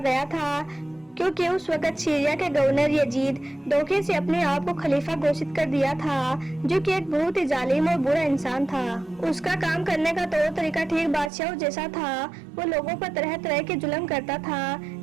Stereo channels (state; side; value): drops out; left; at 11.3 s